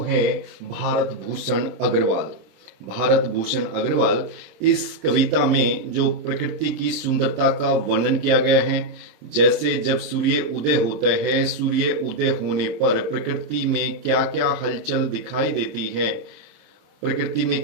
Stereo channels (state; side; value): late; left; 26 ms